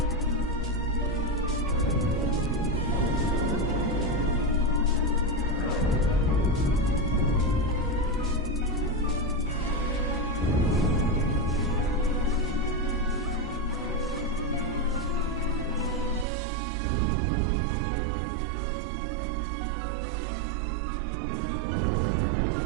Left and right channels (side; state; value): left; drops out; at 16.2 s